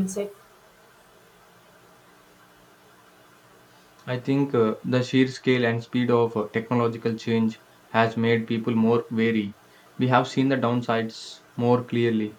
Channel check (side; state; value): both; identical; correlation 1.00